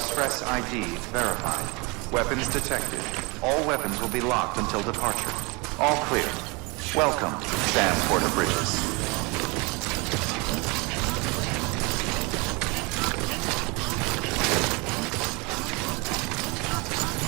ID verified. Weapons detected. All weapons will be locked until departure. All clear. Welcome, Sam Porter Bridges.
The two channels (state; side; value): quieter; left; 27.8 dB